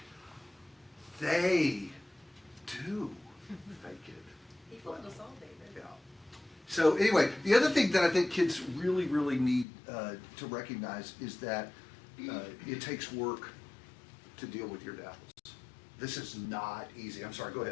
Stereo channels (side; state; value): right; drops out; at 9.7 s